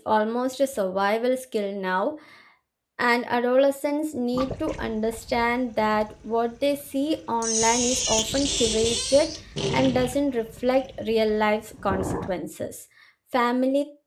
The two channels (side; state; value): both; identical; correlation 1.00